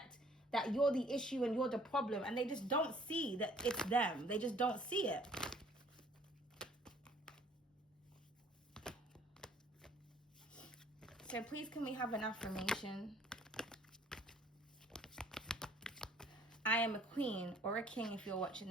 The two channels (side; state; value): both; normal; correlation 0.57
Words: that you're the issue and you're the problem, and they just don't see that it's them. They just don't see it. So please, can we have an affirmation? I am a queen, or a king if you're